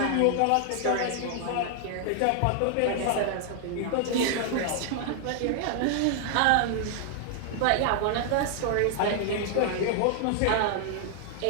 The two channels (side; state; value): both; different; correlation 0.00